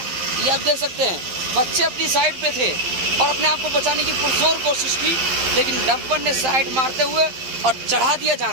आप देख सकते हैं, बच्चे अपनी साइड पे थे और अपने आप को बचाने की पुरजोर कोशिश की, लेकिन डंपर ने साइड मारते हुए और चढ़ा दिया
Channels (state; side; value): late; left; 12 ms